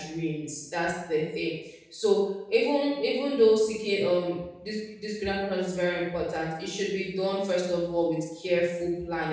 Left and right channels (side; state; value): both; identical; correlation 1.00